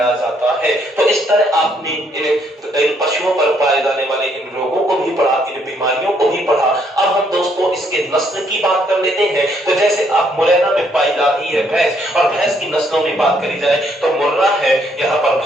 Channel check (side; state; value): both; normal; correlation 0.70